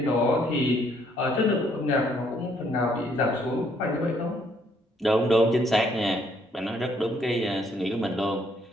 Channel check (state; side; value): normal; both; correlation 0.68